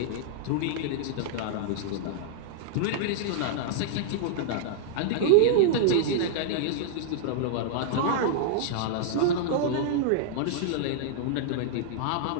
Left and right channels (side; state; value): both; different; correlation -0.02